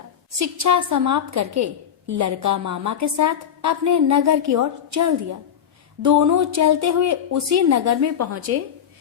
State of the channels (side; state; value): right; quieter; 8.8 dB